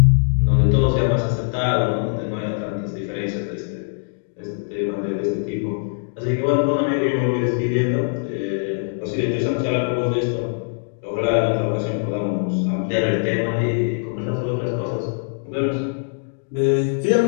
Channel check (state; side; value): silent; right; digital silence